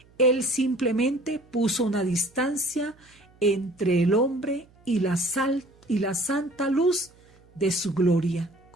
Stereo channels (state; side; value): noise; right; hum, 29 dB below the sound